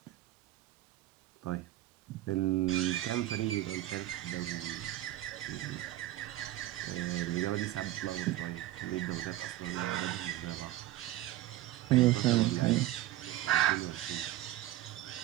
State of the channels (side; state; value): left; quieter; 15.4 dB